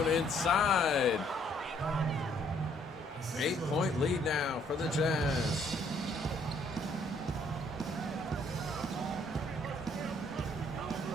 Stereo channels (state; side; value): normal; both; correlation 0.65